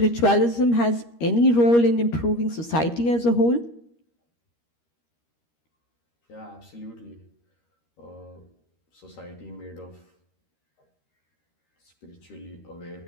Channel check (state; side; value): late; right; 13 ms